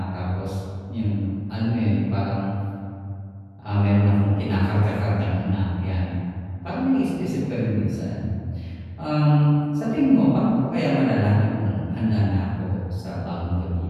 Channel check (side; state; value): both; identical; correlation 1.00